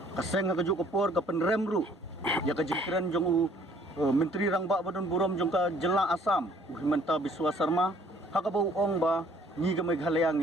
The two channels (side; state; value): both; normal; correlation 0.59